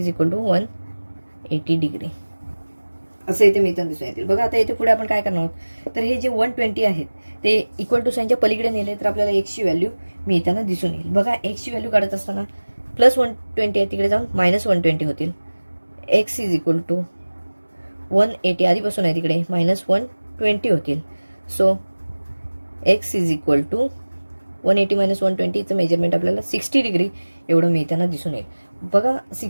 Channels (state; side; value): inverted; both; correlation -1.00